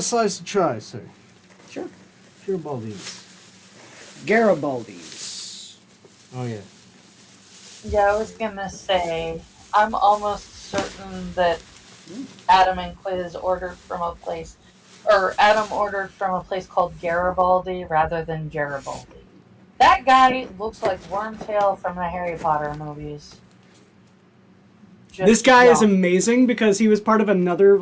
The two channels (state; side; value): identical; both; correlation 1.00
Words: slice a try, sir. Sure. Garibaldi's. Garibaldi's. Oh, yeah. Yeah, I was gonna say, I'm almost certain that Adam and Quiz ordered from a place, or Adam ordered from a place called Garibaldi rather than Garibaldi. That guy looks like Wormtail from the Harry Potter movies. This guy is amazing because he was part of another